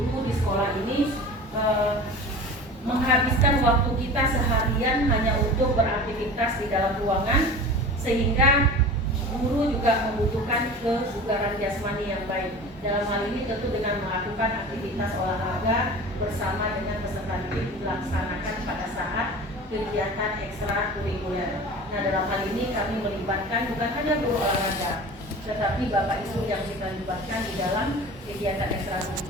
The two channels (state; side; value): normal; both; correlation 0.36